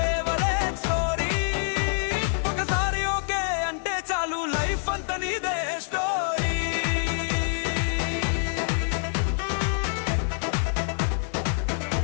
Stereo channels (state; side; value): silent; right; digital silence